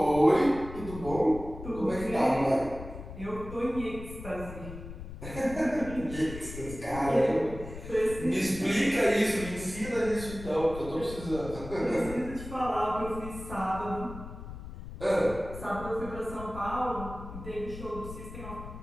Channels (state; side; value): noise; left; rumble, 11 dB below the sound